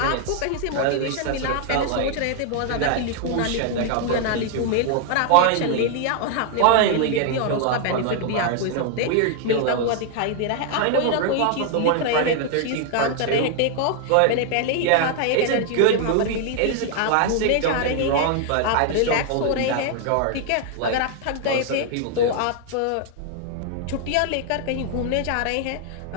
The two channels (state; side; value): different; both; correlation 0.00